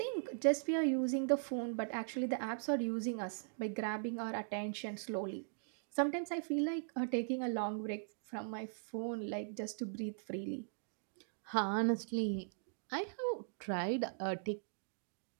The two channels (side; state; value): left; silent; digital silence